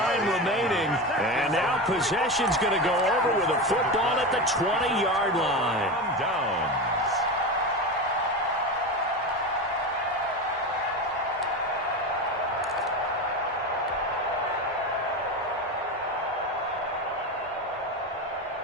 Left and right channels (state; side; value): normal; both; correlation 0.21